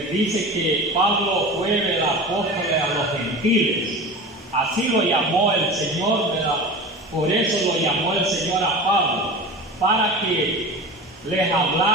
dice que Pablo fue el apóstol a los gentiles. Así lo llamó el Señor, ¿verdad? Por eso lo llamó el Señor a Pablo, para que les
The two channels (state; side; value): normal; both; correlation 0.33